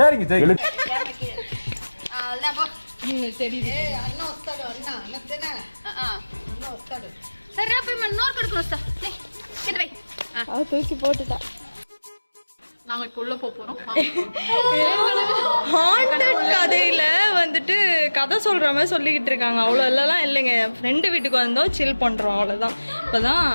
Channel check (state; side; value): inverted; both; correlation -1.00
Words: சரி. தூக்கி போட்டுட்டா. நாங்க இப்ப உள்ள போறோம். ஹாண்டட் கதையில வந்துட்டு கதை சொல்ற மாதிரி சொல்லிக்கிட்டு இருக்காங்க. அவ்வளோ எல்லாம் இல்லைங்க. ஃப்ரெண்டு வீட்டுக்கு வந்தோம், சில் பண்றோம், அவ்வளோதான். இப்போதான்